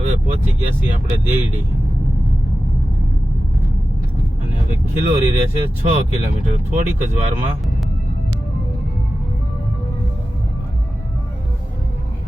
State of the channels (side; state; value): both; normal; correlation 0.94